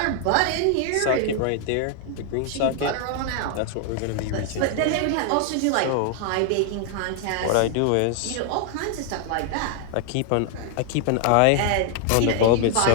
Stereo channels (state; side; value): different; both; correlation 0.00